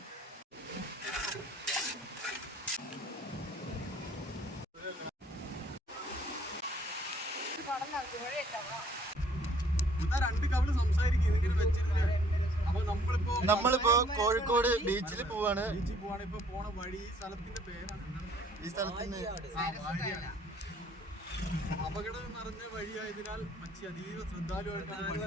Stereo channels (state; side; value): normal; both; correlation 0.59